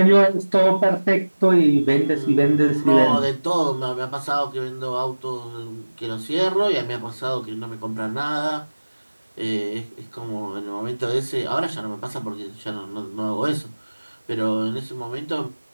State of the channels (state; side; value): inverted; both; correlation -1.00